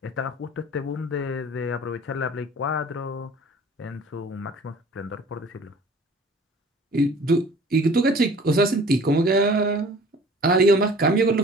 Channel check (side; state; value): both; normal; correlation 0.48